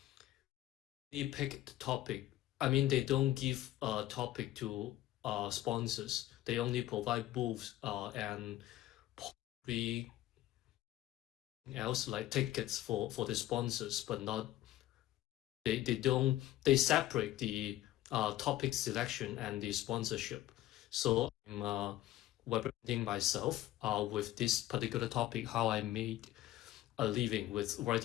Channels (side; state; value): right; quieter; 14.7 dB